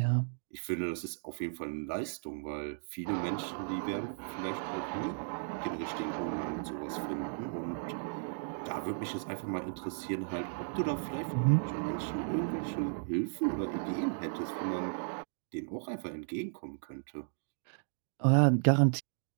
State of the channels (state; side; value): silent; left; digital silence